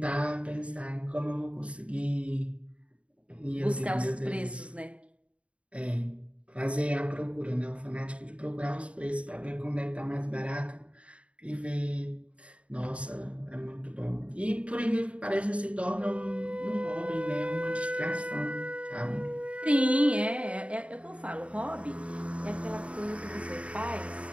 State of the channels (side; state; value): left; late; 0.062 ms